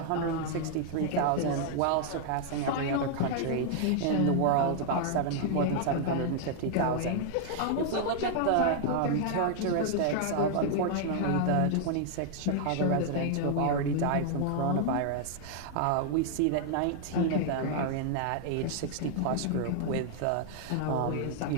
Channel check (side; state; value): both; different; correlation -0.01